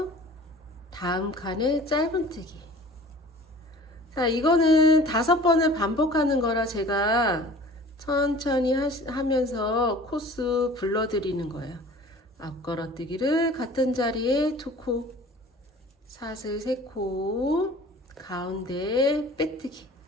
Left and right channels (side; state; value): both; normal; correlation 0.45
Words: 다음 칸에 짧은뜨기. 자, 이거는 5번을 반복하는 거라 제가 천천히 하면서 코스 불러드리는 거예요. 앞걸어뜨기를 같은 자리에 2코, 사슬 3코, 가운데 빼뜨기,